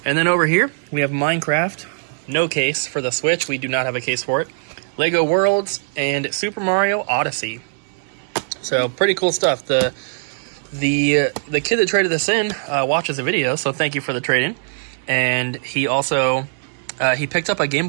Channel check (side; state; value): left; silent; digital silence